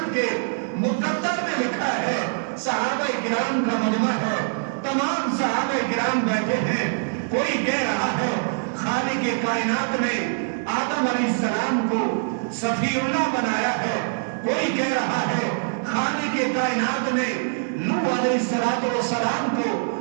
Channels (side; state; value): left; silent; 63 dB below the other